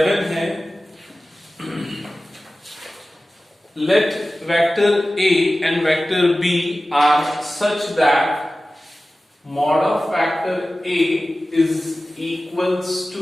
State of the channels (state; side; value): normal; both; correlation 0.96